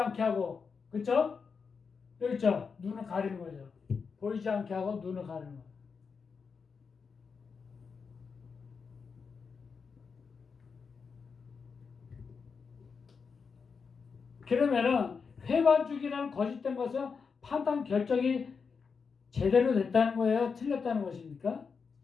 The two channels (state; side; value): quieter; right; 5.5 dB